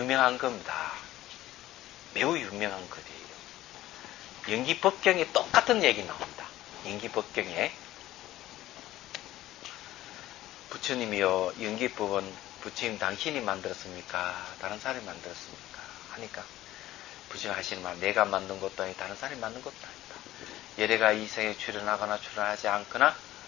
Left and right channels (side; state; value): right; quieter; 14.9 dB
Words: 겁니다. 매우 유명한 글이에요. 연기법경에 똑같은 얘기 나옵니다. 연기법경에 부처님이요 연기법은 부처님 당신이 만들었습니까? 다른 사람이 만들었습니까? 하니까 부처님 하시는 말 내가 만든 것도 아니고 다른 사람이 만든 것도 아니다. 여래가 이 생에 출현하거나 출현하지 않거나